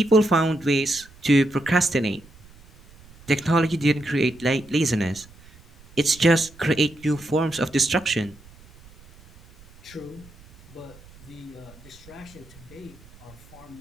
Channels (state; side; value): noise; right; rumble, 24 dB below the sound